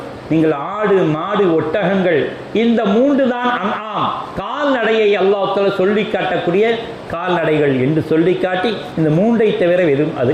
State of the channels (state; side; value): identical; both; correlation 1.00